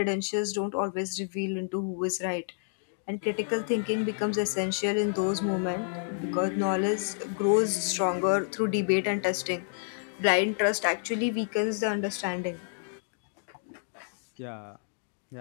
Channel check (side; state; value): right; silent; digital silence